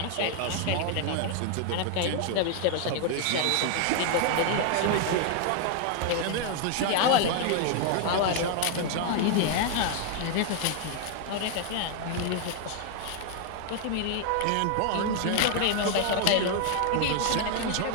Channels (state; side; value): different; both; correlation 0.00